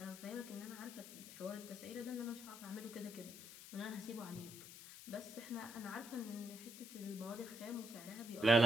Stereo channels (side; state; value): left; noise; hiss, 13 dB below the sound